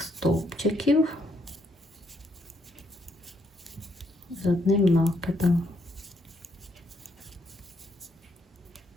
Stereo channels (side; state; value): both; normal; correlation 0.74